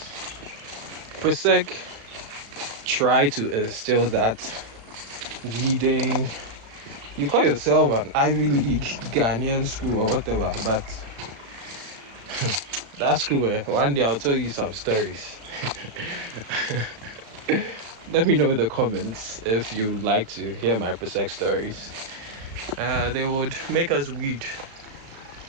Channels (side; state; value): left; late; 36 ms